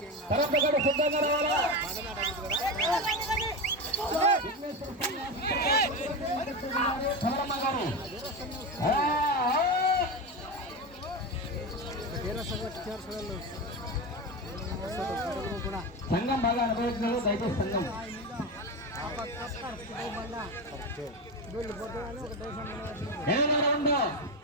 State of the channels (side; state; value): both; normal; correlation 0.18